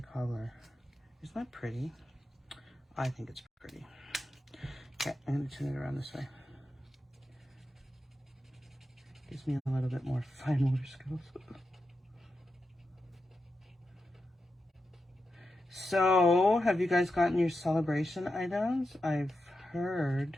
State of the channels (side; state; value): both; normal; correlation 0.89